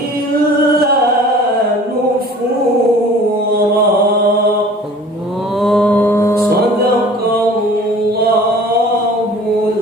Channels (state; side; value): normal; both; correlation 0.47